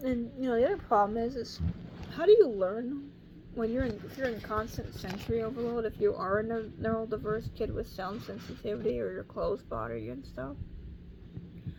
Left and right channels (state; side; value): identical; both; correlation 1.00